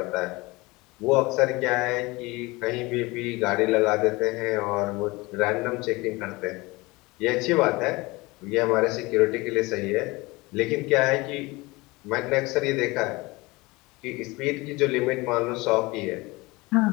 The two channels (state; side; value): quieter; right; 23.1 dB